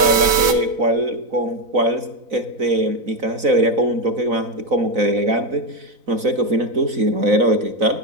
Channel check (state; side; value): late; left; 4.0 ms